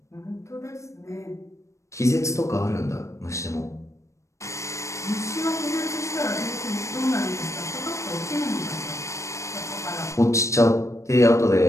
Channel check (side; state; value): right; late; 0.15 ms